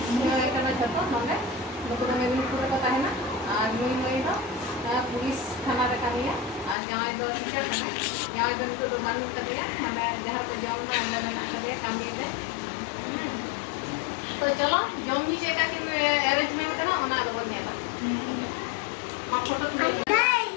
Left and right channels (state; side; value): drops out; right; at 6.8 s